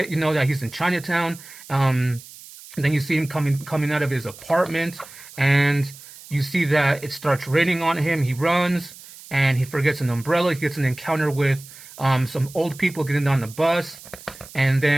you know, that he's in Chinatown. Then you see him coming out of his apartment, and you see that it starts raining on him. He runs, and he forgets an umbrella. He gets an encounter with some old people getting on the bus. And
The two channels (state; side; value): noise; right; hiss, 18 dB below the sound